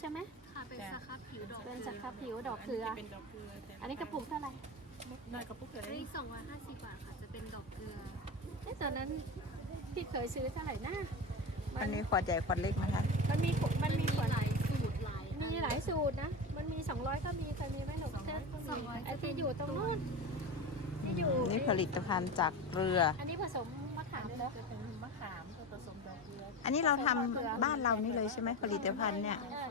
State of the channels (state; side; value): normal; both; correlation 0.24